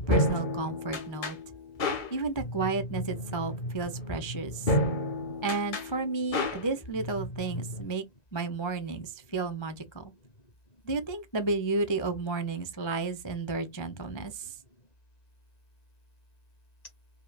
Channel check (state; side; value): late; right; 1.3 ms